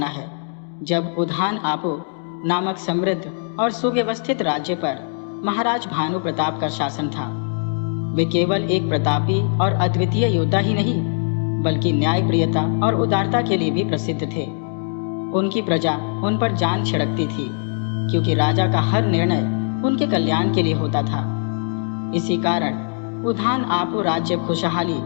है, जब उधान आपो नामक समृद्ध और सुव्यवस्थित राज्य पर महाराज भानु प्रताप का शासन था। वे केवल एक प्रतापी और अद्वितीय योद्धा ही नहीं, बल्कि न्यायप्रियता और उदारता के लिए भी प्रसिद्ध थे। उनकी प्रजा उन पर जान छिड़कती थी, क्योंकि राजा का हर निर्णय उनके कल्याण के लिए होता था। इसी कारण उधान आपो राज्य खुशहाली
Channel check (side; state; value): right; silent; digital silence